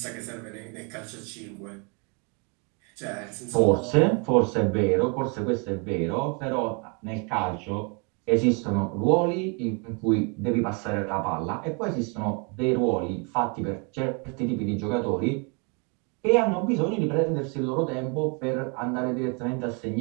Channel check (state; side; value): quieter; left; 34.3 dB